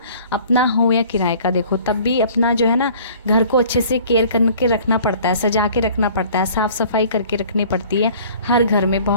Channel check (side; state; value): both; inverted; correlation -0.51